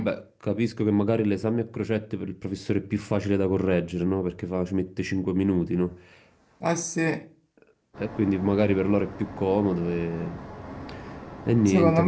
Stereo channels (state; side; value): identical; both; correlation 1.00